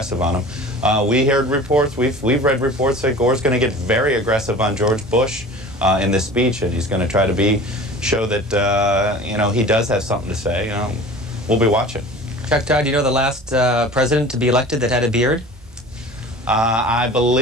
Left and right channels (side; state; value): both; normal; correlation 0.41